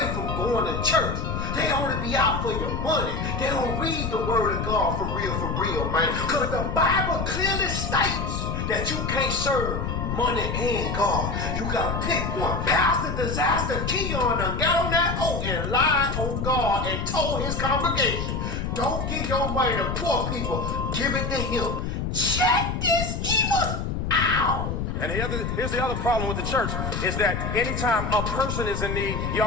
from going to church. They only be out for your money. They don't read the word of God for real, man. Because the Bible clearly states that you can't serve money and God. You gotta pick one. Pastor Disaster Keon done got on that oath and lied on God and told his congregation, don't give your money to poor people, give it to him. Check this evil out. And here's the other problem with the church is that anytime a person is in need,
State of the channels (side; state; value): left; noise; rumble, 2 dB below the sound